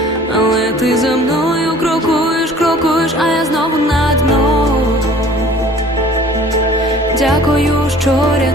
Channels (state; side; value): normal; both; correlation 0.49